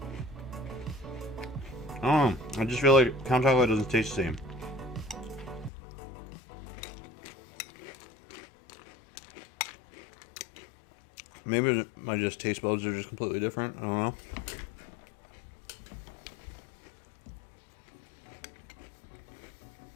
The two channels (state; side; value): drops out; right; at 5.7 s